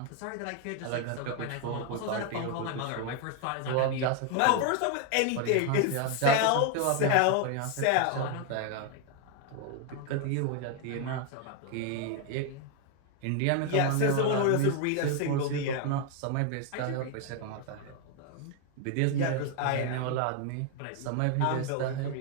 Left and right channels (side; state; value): both; different; correlation 0.01